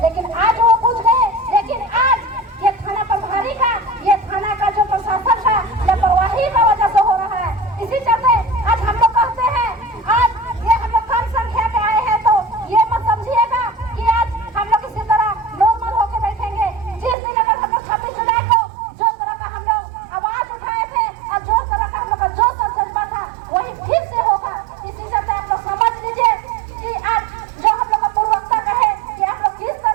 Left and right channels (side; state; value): left; drops out; at 17.2 s